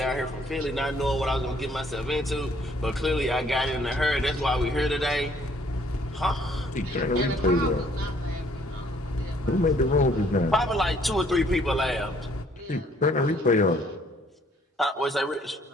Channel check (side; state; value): both; normal; correlation 0.63